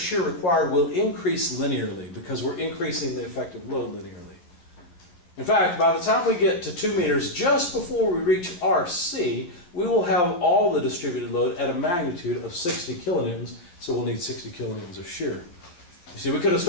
required will increase linearly because we're increasing the effective load linearly. In fact, by the time we get to 2 meters, just before we reach RC, we will have all the distributed load at a magnitude of 60 kilonewtons, so we'll need 60 kilonewtons of shear. You see, we could have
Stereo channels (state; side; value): late; right; 11 ms